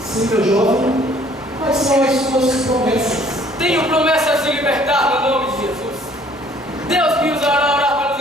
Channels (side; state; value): both; normal; correlation 0.57